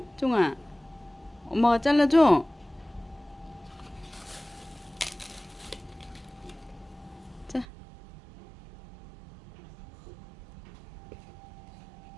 종아. 엄마가 잘라줘? 자.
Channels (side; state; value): left; drops out; at 7.7 s